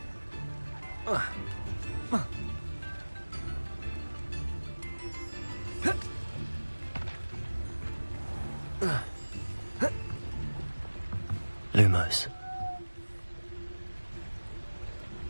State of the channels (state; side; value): inverted; both; correlation -1.00